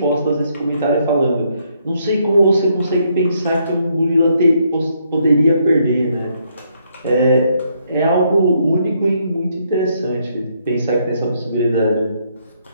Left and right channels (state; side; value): inverted; both; correlation -0.73